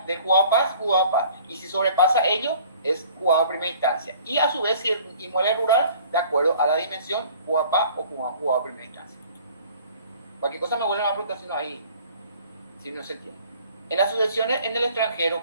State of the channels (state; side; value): inverted; both; correlation -0.51